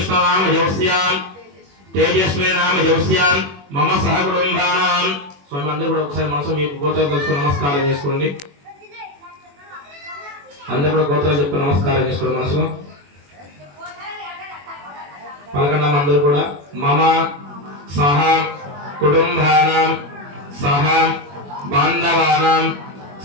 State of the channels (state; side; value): late; left; 21 ms